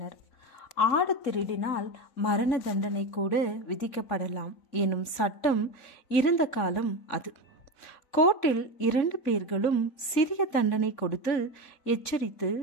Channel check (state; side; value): late; right; 3.6 ms